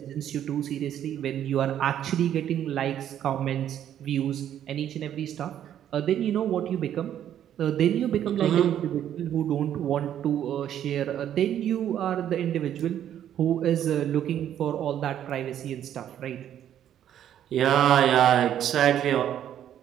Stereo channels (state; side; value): quieter; left; 10.5 dB